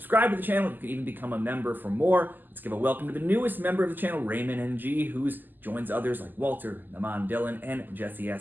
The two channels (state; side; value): late; left; 0.088 ms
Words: to the channel. You can even become a member for more. Let's give a welcome to the newest member of the channel, Raymond NG, who joins others like Walter, Naman Dylan, and Jesse